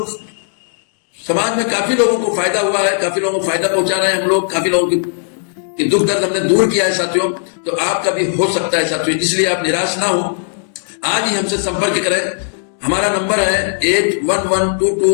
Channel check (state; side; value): silent; right; digital silence